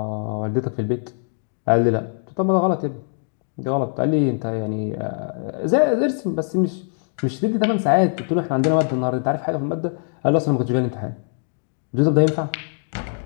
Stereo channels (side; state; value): right; silent; 64 dB below the other